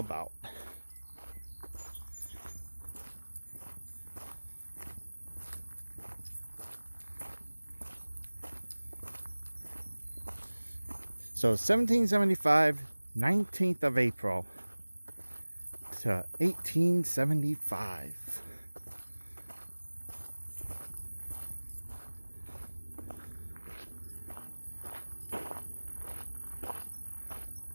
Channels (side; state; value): both; inverted; correlation -1.00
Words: So 1775, 19th of April to 1875.